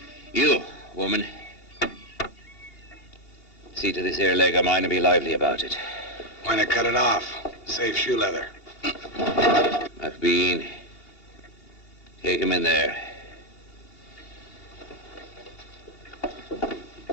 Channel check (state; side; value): late; right; 2.8 ms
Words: You, woman. See to this here leg of mine and be lively about it. Why not cut it off? Save shoe leather. McBean, take him in there.